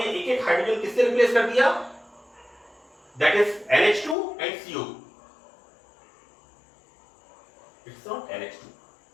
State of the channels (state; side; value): drops out; right; at 4.2 s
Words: एक एक हाइड्रोजन किससे रिप्लेस कर दिया, that is NH2 and CO, it's not NH2,